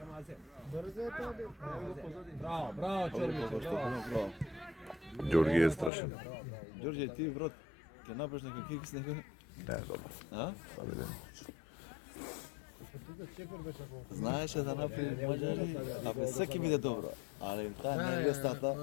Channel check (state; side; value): drops out; right; at 5.9 s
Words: Браво, Браво. Ѓорги е страшен. Ѓорѓе, ти брат, ќе направиш нека кик с него? Не, добро. А? Да видим. Знаеше да направи мажари, абе секи биде добро, али таа не е лесната.